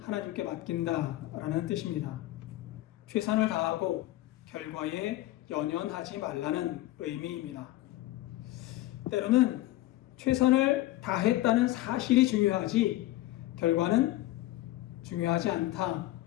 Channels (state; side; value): quieter; right; 16.1 dB